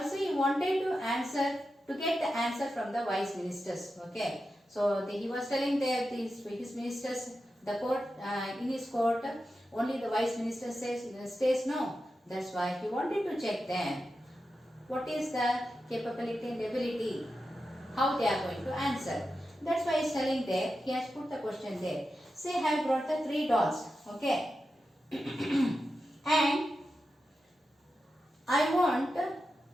he wanted to get the answer from the wise ministers, okay. So, he was telling his ministers, the court, in his court, only the wise minister stays no. That's why he wanted to check them. What is the capability and ability? How they are going to answer. That's why he's telling there, he has put the question there. Say, I have brought the 3 dolls, okay. And I want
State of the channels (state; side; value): normal; both; correlation 0.90